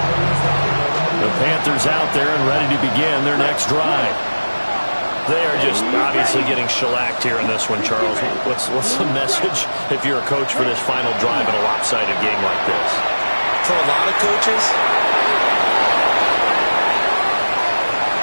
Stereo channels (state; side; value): inverted; both; correlation -1.00